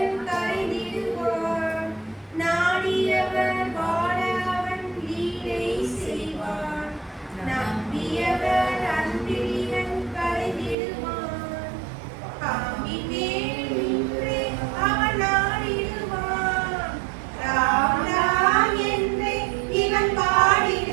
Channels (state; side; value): drops out; left; at 10.8 s